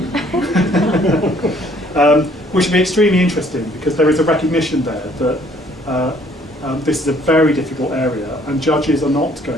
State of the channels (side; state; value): both; normal; correlation 0.60